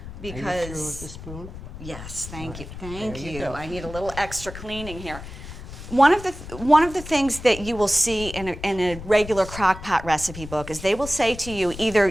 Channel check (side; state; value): left; noise; rumble, 12 dB below the sound